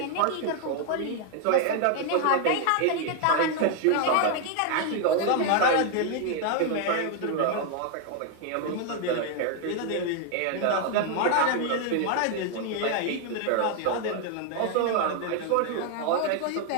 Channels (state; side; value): different; both; correlation 0.00